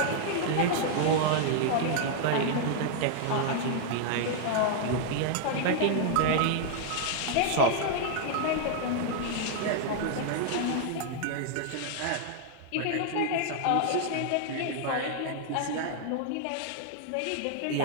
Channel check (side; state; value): both; different; correlation -0.01